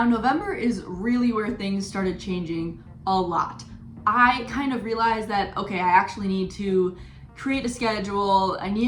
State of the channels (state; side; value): identical; both; correlation 1.00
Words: November is really where things started changing a lot. I kind of realized that, okay, I actually need to create a schedule. I